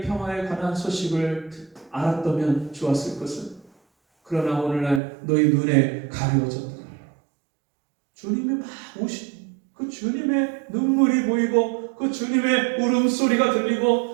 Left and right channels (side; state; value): left; drops out; at 5.0 s